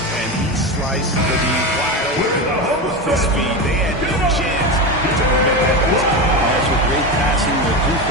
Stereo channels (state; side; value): normal; both; correlation 0.19